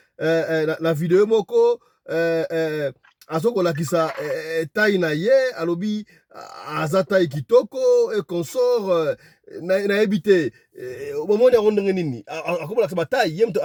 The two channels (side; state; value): both; identical; correlation 1.00